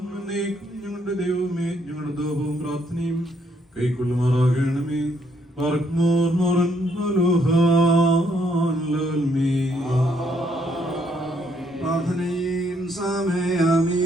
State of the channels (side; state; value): both; normal; correlation 0.72